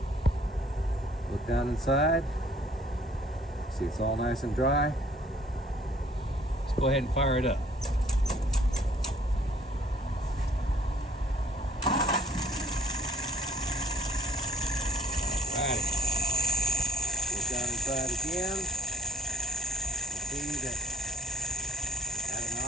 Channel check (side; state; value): both; normal; correlation 0.59